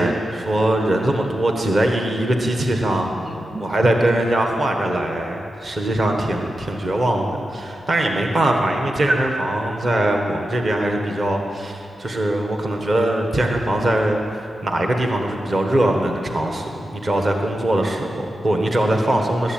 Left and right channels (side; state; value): both; normal; correlation 0.90